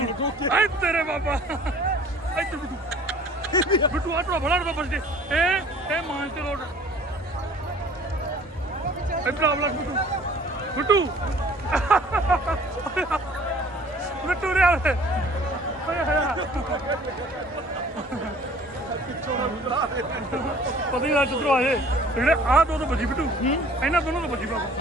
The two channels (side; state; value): both; normal; correlation 0.51